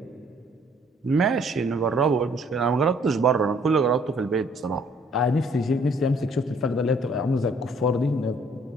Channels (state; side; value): normal; both; correlation 0.61